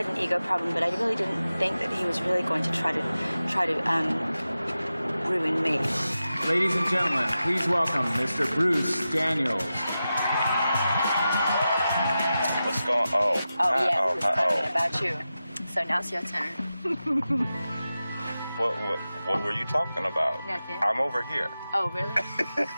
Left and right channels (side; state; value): both; inverted; correlation -0.93